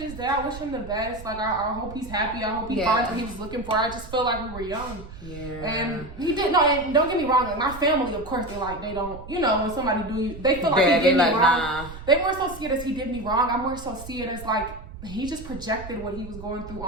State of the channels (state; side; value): noise; right; rumble, 14 dB below the sound